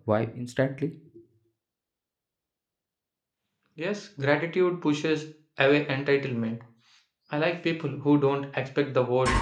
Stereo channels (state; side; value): identical; both; correlation 1.00